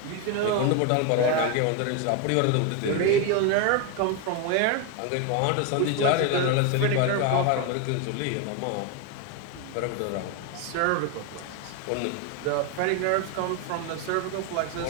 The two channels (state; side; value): different; both; correlation 0.02